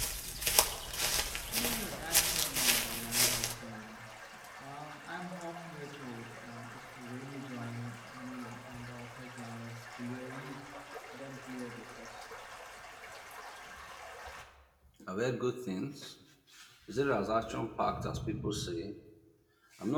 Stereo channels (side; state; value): both; identical; correlation 1.00